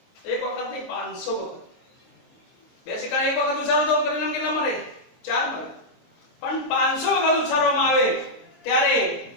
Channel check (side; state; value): right; late; 23 ms